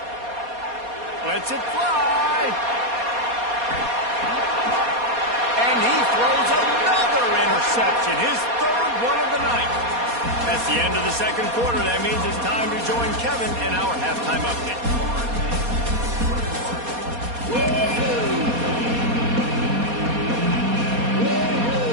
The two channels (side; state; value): left; late; 4.2 ms